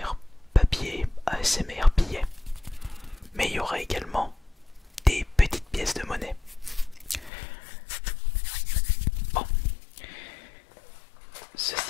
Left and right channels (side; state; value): right; drops out; at 7.3 s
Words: papier, ASMR billet. Mais il y aura également des petites pièces de monnaie. Bon,